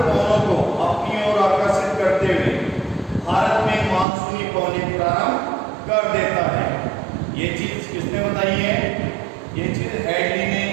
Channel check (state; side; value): drops out; left; at 4.0 s